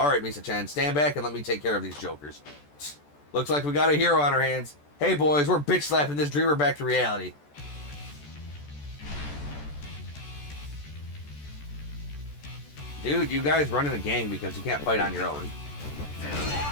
Misa-chan, stand back and let me take care of these jokers. Looks like we got a hero on our hands. Hey, boys, we're bitch-slapping this dreamer back to reality. Dude, you guys run in a gang because you can't fight on your own.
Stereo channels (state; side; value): late; right; 14 ms